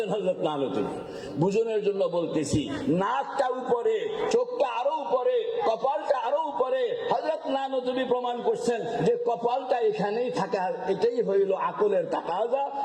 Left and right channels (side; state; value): both; identical; correlation 1.00